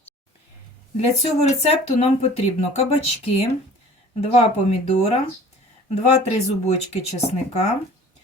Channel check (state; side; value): normal; both; correlation 0.47